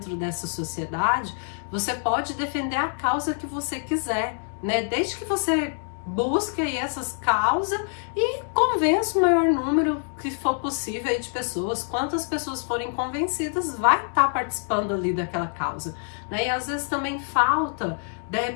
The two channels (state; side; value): silent; right; 61 dB below the other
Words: dessa sociedade, você pode defender a causa que você quiser, né, desde que você busque aí essas causas e convença o maior número que for possível aí de pessoas. Quantas pessoas forem convencidas, vai estar participando ali daquela causa, né? E às vezes também falta, de